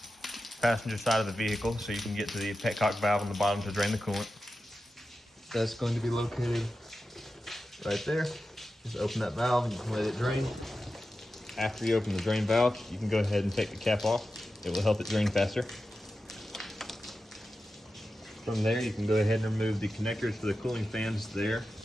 passenger side of the vehicle so you can get to the petcock valve on the bottom to drain the coolant. That's going to be located right there. Just open that valve and you can let it drain. After you open the drain valve, you can go ahead and take the cap off. It will help it drain faster. From there, you can go ahead and remove the connectors for the cooling fans there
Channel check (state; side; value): normal; both; correlation 0.92